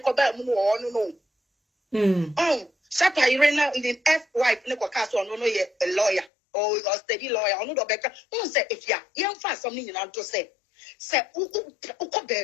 come back no. Shata Irena in the F-wife Nico Castle no a lawyer or a steady lawyer or no better. Who say if young fast something you want to say uko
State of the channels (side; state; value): right; drops out; at 6.3 s